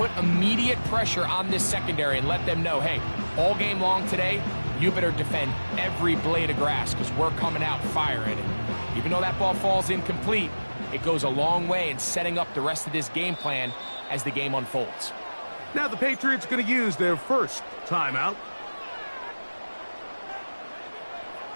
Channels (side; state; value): both; inverted; correlation -1.00